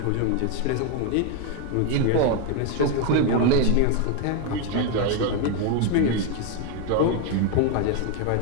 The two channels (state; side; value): different; both; correlation 0.01